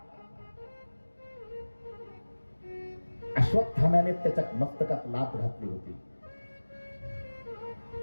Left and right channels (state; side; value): inverted; both; correlation -1.00